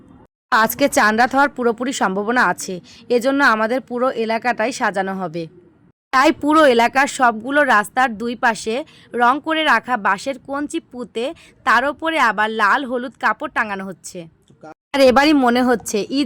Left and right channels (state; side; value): identical; both; correlation 1.00